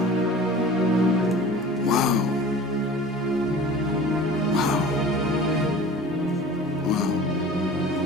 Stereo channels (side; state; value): both; normal; correlation 0.41